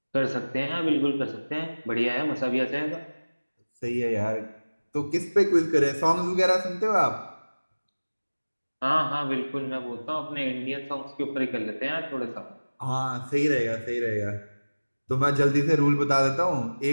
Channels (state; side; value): inverted; both; correlation -1.00